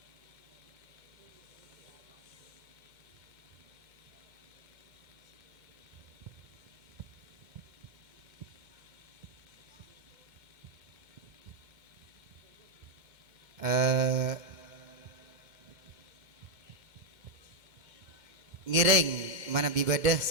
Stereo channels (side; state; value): left; late; 2.2 ms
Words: Ngireng mana bibadah